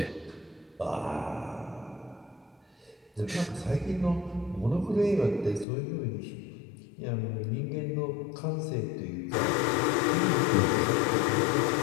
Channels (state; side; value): drops out; right; at 5.7 s